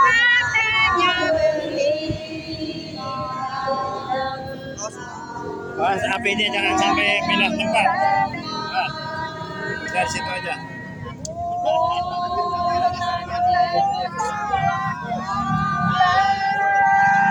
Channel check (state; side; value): identical; both; correlation 1.00